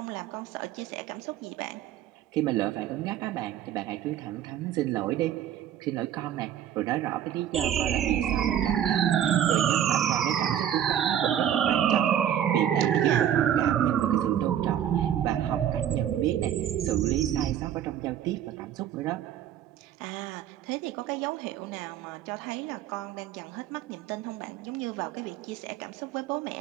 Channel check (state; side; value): quieter; left; 10.3 dB